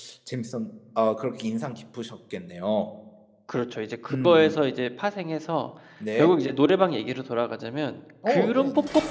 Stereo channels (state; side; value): identical; both; correlation 1.00